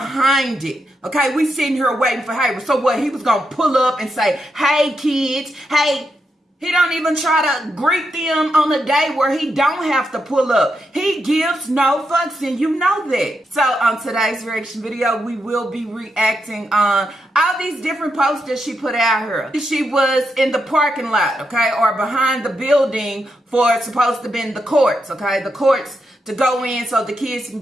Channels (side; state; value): both; normal; correlation 0.84